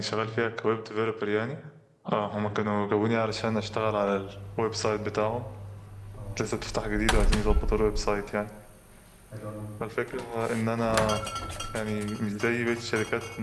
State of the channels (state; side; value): identical; both; correlation 1.00